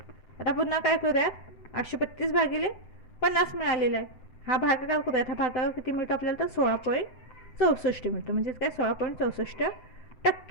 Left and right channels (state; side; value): late; right; 7.9 ms